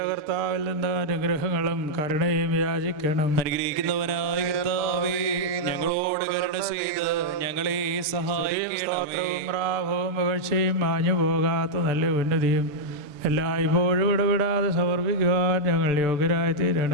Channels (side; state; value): left; late; 6.7 ms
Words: കർത്താവിൽ നിന്ന് അനുഗ്രഹങ്ങളും കരുണയും യാചിക്കണം. അനുഗ്രഹിക്കുന്നവനായ കർത്താവേ, ഞങ്ങളോട് കരുണ ചെയ്ത് ഞങ്ങളെ സഹായിക്കണമേ. റാഭവും പുകഴ്ചയും മാഞ്ഞു പോകാത്ത നല്ല ഉന്നതിയും എല്ലായ്പ്പോഴും ഇടപെടാതെ സമർപ്പിക്കുവാൻ ഞങ്ങൾ യോഗ്യരായി